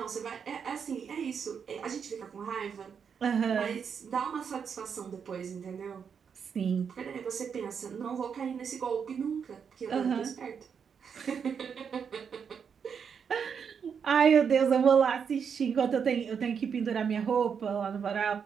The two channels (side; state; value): left; quieter; 6.8 dB